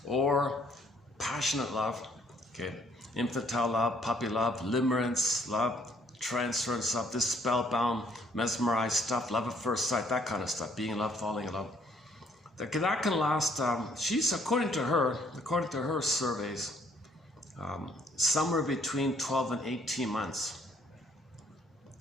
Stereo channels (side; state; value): both; normal; correlation 0.65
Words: or passionate love Okay, infantile love, puppy love, limerence love, transference love, this spellbound, mesmerized stuff, love at first sight, that kind of stuff, being in love, falling in love. That can last, she's, according to her surveys, somewhere between 12 and 18 months.